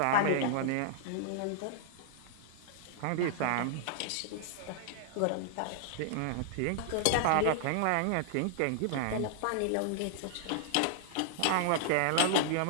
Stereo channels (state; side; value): different; both; correlation -0.01